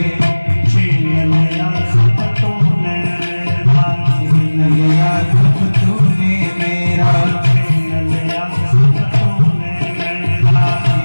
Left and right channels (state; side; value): inverted; both; correlation -1.00